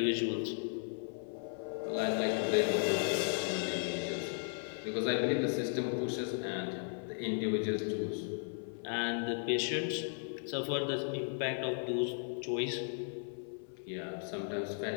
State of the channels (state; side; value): silent; right; 54 dB below the other